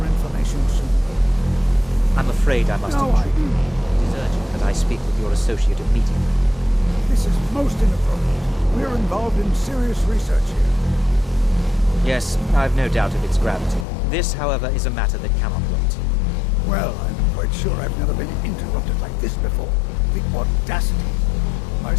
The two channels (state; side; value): drops out; right; at 13.9 s